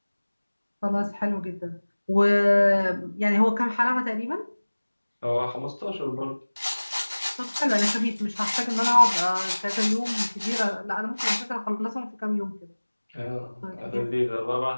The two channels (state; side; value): inverted; both; correlation -1.00